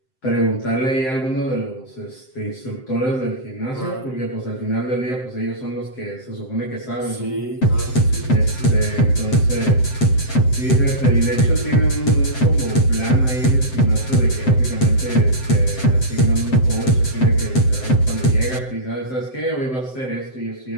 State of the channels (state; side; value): late; right; 7.7 ms